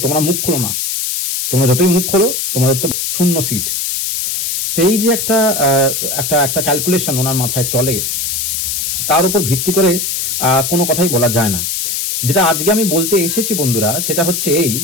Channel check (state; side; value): noise; left; hiss, 1 dB below the sound